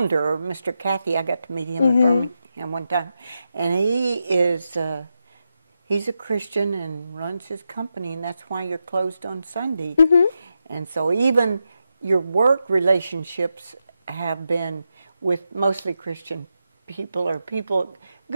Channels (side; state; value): both; inverted; correlation -0.87